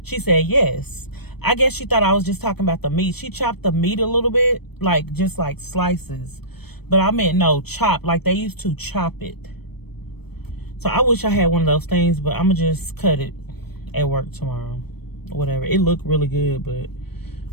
She said, yes. I guess she thought I was just talking about the meat. She chopped the meat a little bit, like just like slices. But I meant no, chop, like they used to chop it. So I wish I had one of those things, but I'm going to just cut it at work tomorrow. Whatever. It looked really good, but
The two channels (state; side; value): late; right; 0.97 ms